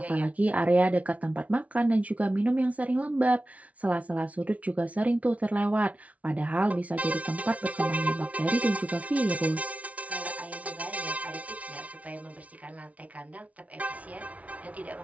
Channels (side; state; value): left; late; 0.067 ms